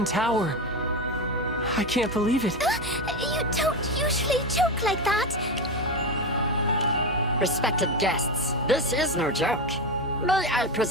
tower. I can't believe it. You don't usually joke like that. Respected guests, this is no joke. May I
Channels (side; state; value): right; noise; hum, 19 dB below the sound